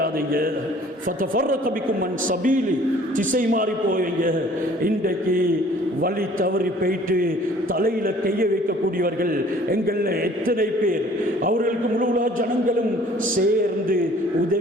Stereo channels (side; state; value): both; normal; correlation 0.53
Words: திசை மாறி போவீங்க. இன்றைக்கு வழி தவறி போயிட்டு தலையில கைய வைக்கக்கூடியவர்கள் எங்கள்ல எத்தனை பேர்? அவர்களுக்கு முழு ஜனங்களும் சேர்ந்து